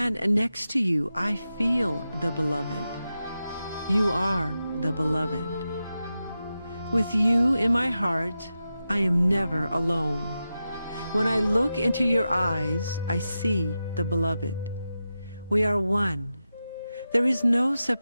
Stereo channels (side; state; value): both; inverted; correlation -0.91